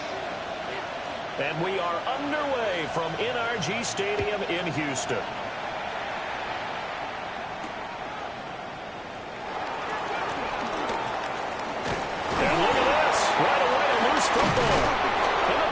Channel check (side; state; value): both; identical; correlation 1.00